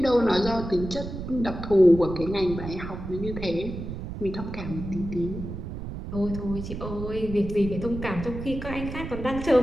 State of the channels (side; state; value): right; noise; rumble, 8 dB below the sound